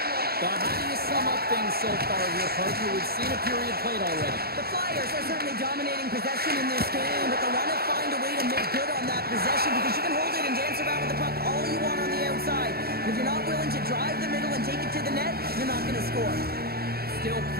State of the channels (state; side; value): late; left; 0.45 ms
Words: But how do you sum up things so far here, partner? We've seen a period played already. The Flyers are certainly dominating possession in this game, but they want to find a way to make good on that possession because you can hold it and dance around with the puck all you want on the outside. But if you're not willing to drive the middle and take it to the net, you're not going to score. Still